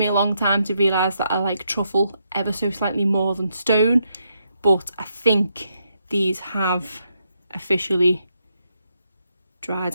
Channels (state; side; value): inverted; both; correlation -0.79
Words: a long time to realise that I like Truffle ever so slightly more than Stone, but I think these have officially dried